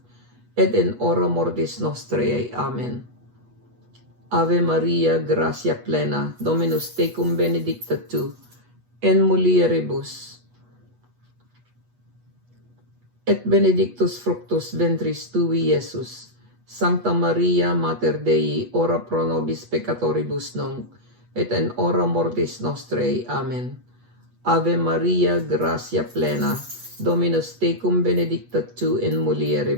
et in hora mortis nostrae. Amen. Ave Maria, gratia plena, Dominus tecum benedicta tu, in mulieribus, et benedictus fructus ventris tui, Iesus. Sancta Maria Mater Dei, ora pro nobis peccatoribus nunc, et in hora mortis nostrae. Amen. Ave Maria, gratia plena, Dominus tecum benedicta tu in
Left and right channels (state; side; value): late; left; 8.2 ms